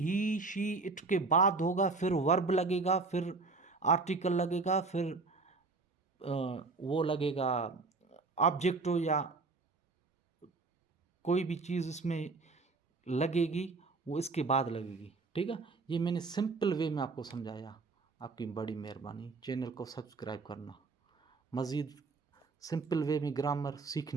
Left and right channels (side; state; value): left; quieter; 4.0 dB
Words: शी इट के बाद होगा, फिर वर्ब लगेगा, फिर आर्टिकल लगेगा, फिर वो लगेगा ऑब्जेक्ट हो या कोई भी चीज़ इसमें लगेगी, वो इसके बाद लगेगी, ठीक है। ये मैंने सिंपल वे में आपको समझाया, आपकी बड़ी मेहरबानी। चैनल को सब्सक्राइब करना मज़ीद सिंपल वे में ग्रामर